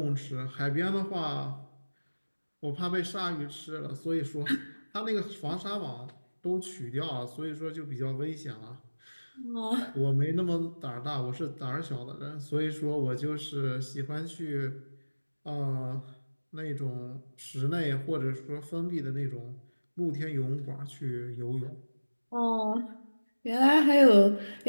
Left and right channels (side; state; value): both; inverted; correlation -1.00